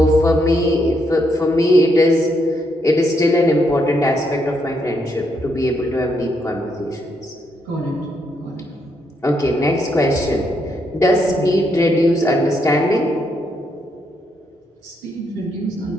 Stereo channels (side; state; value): both; normal; correlation 0.77